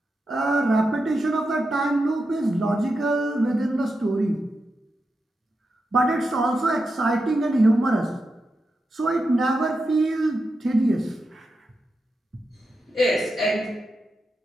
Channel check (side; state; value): both; normal; correlation 0.88